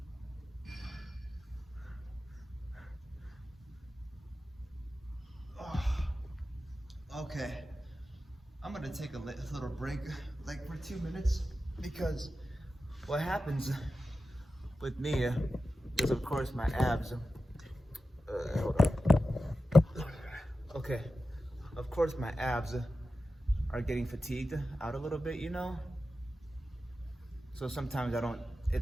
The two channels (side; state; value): both; normal; correlation 0.92